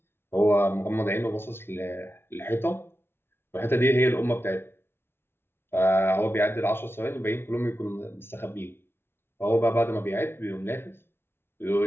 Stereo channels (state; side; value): late; right; 0.11 ms